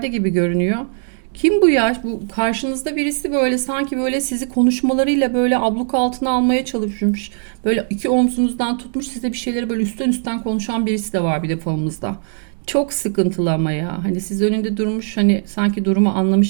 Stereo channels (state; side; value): silent; left; digital silence